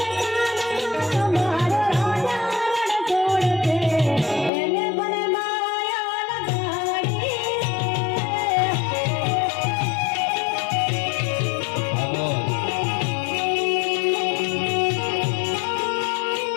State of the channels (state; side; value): drops out; right; at 4.5 s